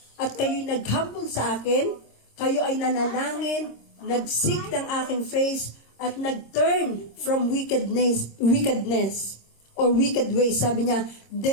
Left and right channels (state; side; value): late; right; 26 ms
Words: at kayo'y nag-humble sa akin, kayo ay nanalangin, nag-seek ng aking face, at nag-turn from wickedness, or wicked ways, sabi niya,